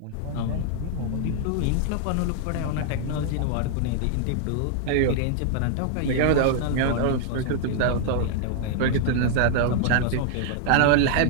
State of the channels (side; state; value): both; different; correlation 0.00